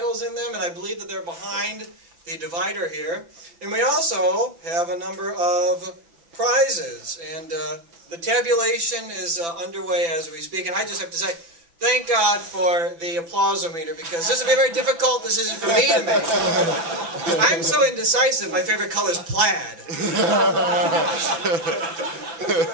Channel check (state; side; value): late; left; 6.0 ms